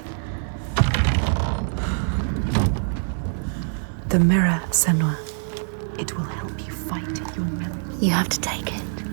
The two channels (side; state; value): left; silent; digital silence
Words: The mirror, Senua. It will help you fight your memories. You have to take